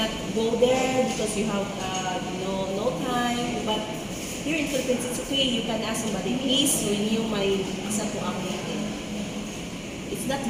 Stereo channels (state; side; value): identical; both; correlation 1.00